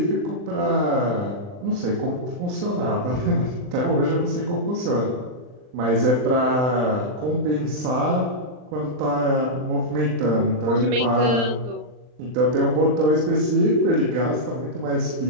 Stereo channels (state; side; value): late; left; 39 ms